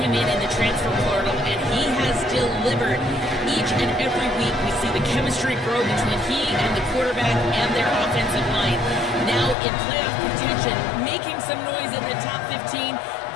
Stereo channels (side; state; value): right; drops out; at 9.6 s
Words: in the transfer portal, and he has delivered. Each and every week we see the chemistry grow between he and the quarterback and their offensive line. Now in playoff contention, making some noise in the top 15,